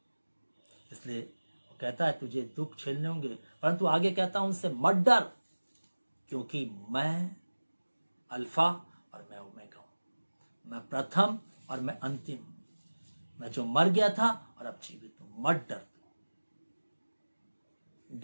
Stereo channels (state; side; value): inverted; both; correlation -1.00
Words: इसलिए वो कहता है तुझे दुख झेलने होंगे, परंतु आगे कहता हूं उनसे मत डर, क्योंकि मैं अल्फा और मैं ओमेगा हूं, मैं प्रथम और मैं अंतिम, मैं जो मर गया था और अब जीवित हूं। मत डर,